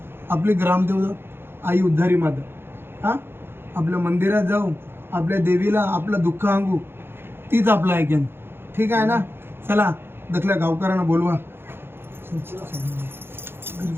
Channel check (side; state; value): left; late; 0.11 ms